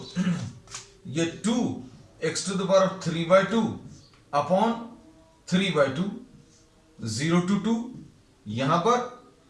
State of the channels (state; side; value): identical; both; correlation 1.00